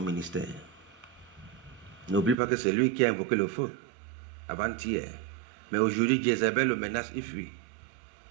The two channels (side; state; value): left; drops out; at 2.4 s